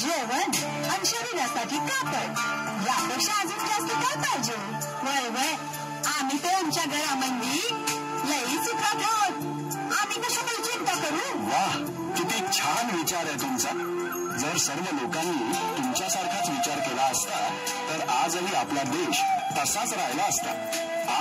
आणि शरीरासाठी कापड, यापेक्षा अजून जास्त काय पाहिजे? वय वय, आम्ही तर आमच्या घरामध्ये लई सुखात आहोत. आम्ही कशाला चिंता करू? वाह, किती छान विचार आहे तुमचा. जर सर्व लोकांनी तुमच्यासारखाच विचार केला असता तर आजही आपला देश तसाच राहिला असता.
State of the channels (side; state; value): both; identical; correlation 1.00